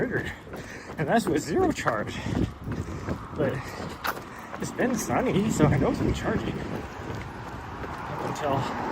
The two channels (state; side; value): identical; both; correlation 1.00